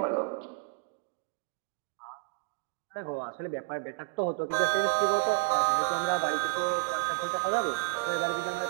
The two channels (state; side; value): quieter; left; 30.6 dB